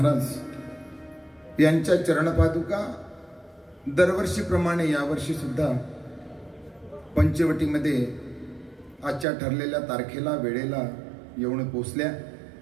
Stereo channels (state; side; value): drops out; left; at 9.2 s